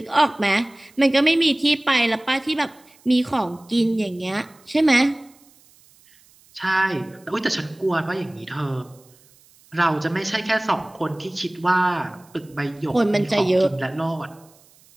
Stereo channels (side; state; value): right; noise; hiss, 29 dB below the sound